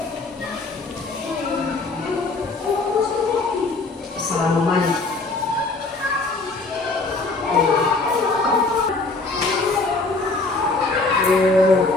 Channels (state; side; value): quieter; right; 3.5 dB